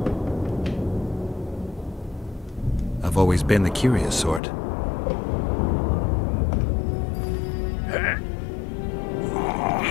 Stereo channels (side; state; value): right; drops out; at 4.4 s